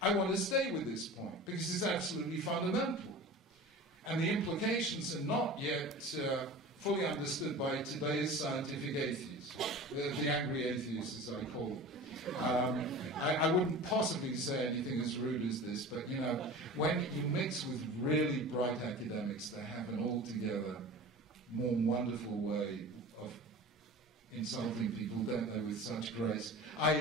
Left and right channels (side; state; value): both; normal; correlation 0.36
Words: I want to stay with this point because it's absolutely fundamental. And the implications are not yet fully understood by today's scientific atheists, the angry atheists as I call them. I wouldn't possibly say anything as rude as this, but you know, when you mix with really bright academics, they have an altogether more wonderful way of insulting people, don't they, with such grace.